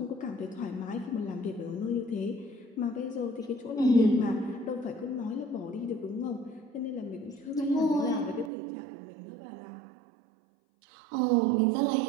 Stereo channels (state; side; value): drops out; left; at 8.5 s